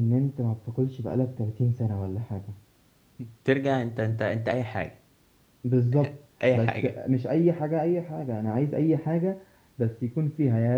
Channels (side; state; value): both; identical; correlation 1.00